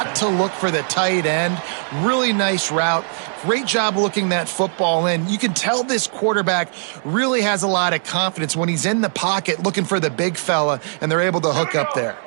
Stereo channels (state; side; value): silent; left; digital silence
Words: to look for the tight end. Really nice route. Great job looking that football in. You can tell this quarterback really has a lot of confidence when he's in the pocket looking for the big fella, and they're able to hook up there.